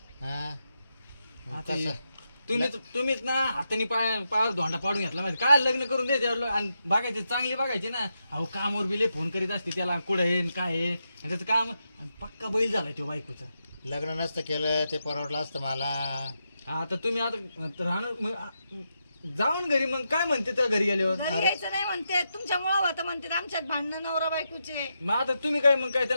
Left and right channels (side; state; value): both; inverted; correlation -0.85